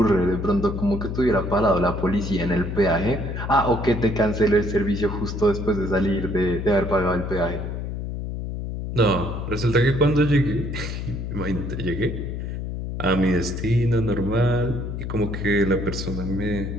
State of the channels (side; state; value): left; noise; hum, 5 dB below the sound